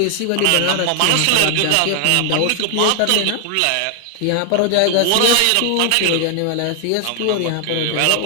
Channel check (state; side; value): different; both; correlation 0.00